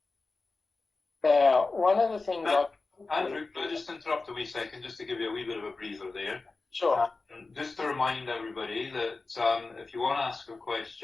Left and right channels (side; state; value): right; quieter; 3.7 dB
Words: Now, one of the things Andrew, can I just interrupt a wee second, just to give you a wee bit of a breather there? Sure. Just to remind everybody that if you want to ask a